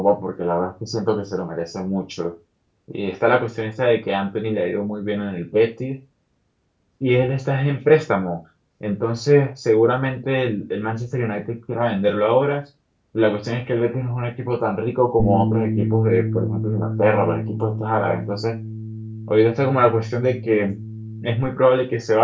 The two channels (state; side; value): identical; both; correlation 1.00